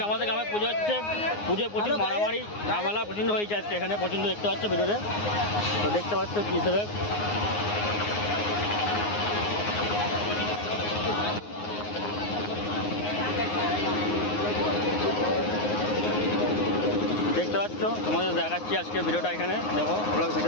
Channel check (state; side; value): late; right; 9.6 ms